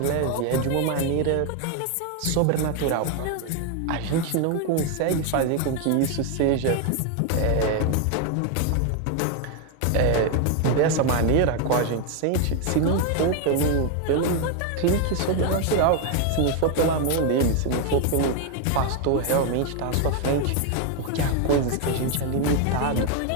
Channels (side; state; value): both; different; correlation 0.01